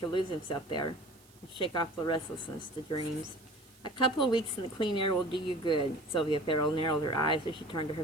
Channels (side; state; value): right; noise; hiss, 27 dB below the sound